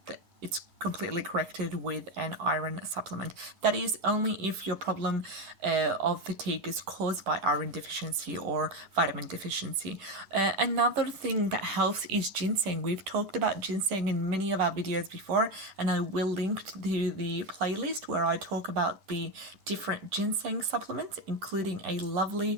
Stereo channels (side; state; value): left; late; 10 ms